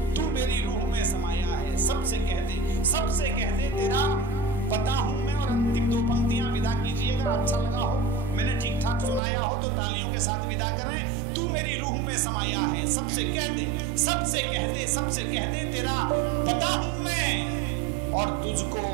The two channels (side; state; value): left; drops out; at 9.2 s